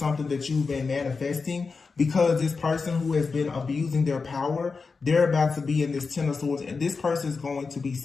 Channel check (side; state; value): right; quieter; 4.6 dB